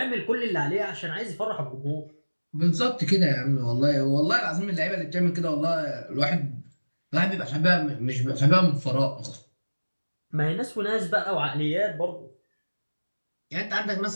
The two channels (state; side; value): inverted; both; correlation -1.00